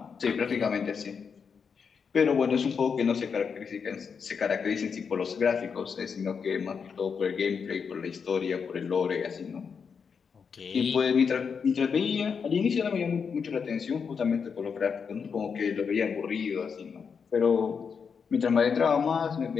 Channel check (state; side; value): quieter; right; 6.1 dB